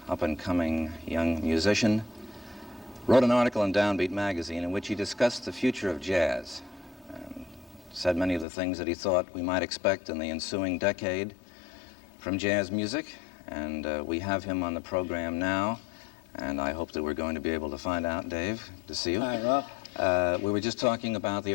up-and-coming young musician, wrote an article in Downbeat magazine in which he discussed the future of jazz and said many of the things that he thought we might expect in the ensuing decade from jazz music. And we have him on the program now, and I hope that we're going to be able to find out. Dave, good to see you. Hi, Ralph. We were just talking about the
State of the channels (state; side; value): drops out; right; at 8.5 s